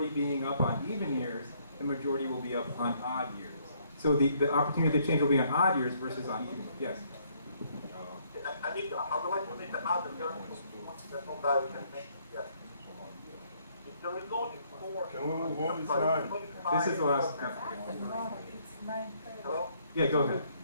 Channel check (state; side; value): inverted; both; correlation -0.67